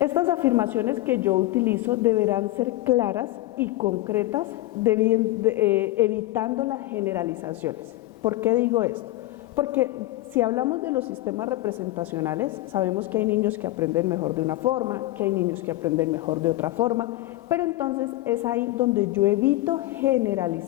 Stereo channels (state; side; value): quieter; right; 17.1 dB